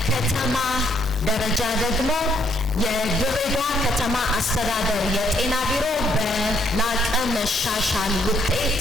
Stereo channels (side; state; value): both; normal; correlation 0.71